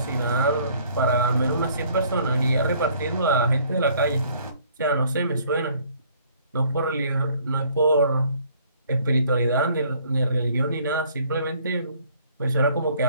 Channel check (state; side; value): inverted; both; correlation -0.60